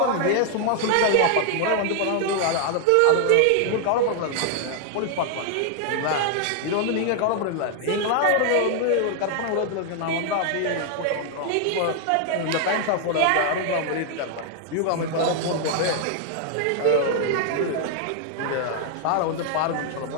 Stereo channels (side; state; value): both; different; correlation 0.00